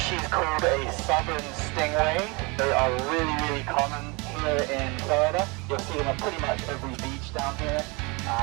called a southern stingray. They are really common here in Florida. You'll see them at pretty much every beach down here.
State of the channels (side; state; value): left; quieter; 28.1 dB